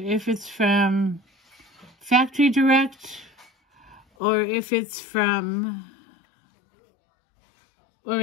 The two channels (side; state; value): right; drops out; at 4.0 s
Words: it's from Factory Direct or if it's from